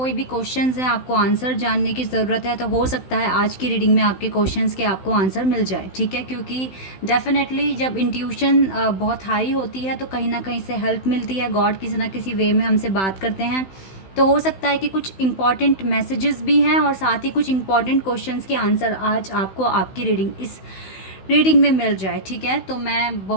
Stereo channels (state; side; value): late; right; 16 ms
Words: भी क्वेश्चंस हैं, आपको आंसर जानने की ज़रूरत है, तो हो सकता है आज की रीडिंग में आपके क्वेश्चंस के आपको आंसर मिल जाए। ठीक है, क्योंकि डेफिनेटली जब इंट्यूशन बहुत हाई होती है तो कहीं ना कहीं से हेल्प मिलती है। गॉड किसी ना किसी वे में हमसे बात करते हैं। तो हो सकता है कि कुछ इंपॉर्टेंट मैसेजेस भी हैं और साथ ही कुछ इंपॉर्टेंट क्वेश्चंस के आंसर आज आपको आपकी इस रीडिंग में मिल जाए। ठीक है, तो मैं